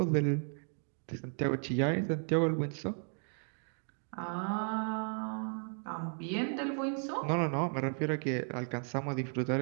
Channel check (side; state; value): left; silent; 55 dB below the other